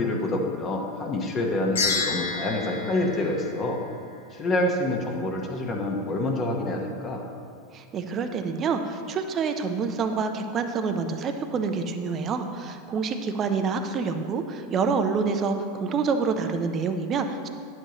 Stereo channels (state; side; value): normal; both; correlation 0.36